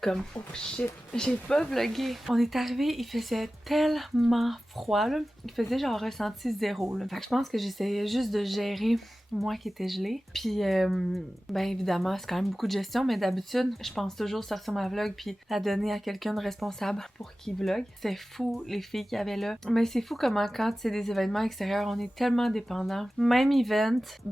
oh shit, j'ai pas vlogué. On est arrivé, il faisait tellement froid, là. Il faisait genre ressenti 0, là. Fait que je pense que j'essayais juste de gérer moi qui étais gelée. Puis, ben évidemment, c'est quand même beaucoup de gestion, mais d'habitude, je pense toujours sortir ma vlog puis la donner à quelqu'un de responsable pour qu'il vlog. C'est fou, les filles qu'il y avait là. Mais c'est fou comment quand c'est des événements extérieurs, on est tellement dépendant. Même event,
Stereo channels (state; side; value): normal; both; correlation 0.96